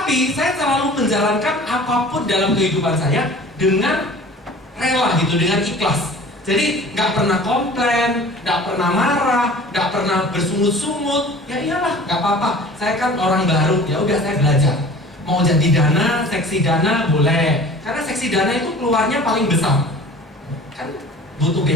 saya selalu menjalankan apapun dalam kehidupan saya dengan rela gitu, dengan ikhlas. Jadi nggak pernah komplain, nggak pernah marah, nggak pernah bersungut-sungut. Ya iyalah, nggak apa-apa. Saya kan orang baru, ya udah saya belajar. Mau jadi dana, seksi dana boleh. Karena seksi dana itu keluarnya paling besar. Kan butuh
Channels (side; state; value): both; normal; correlation 0.44